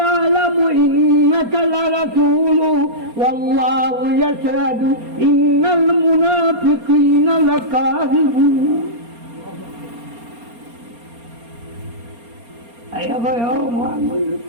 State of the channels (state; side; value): late; left; 4.3 ms